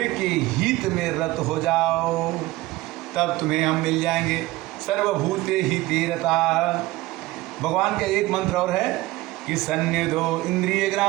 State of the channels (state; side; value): quieter; left; 18.8 dB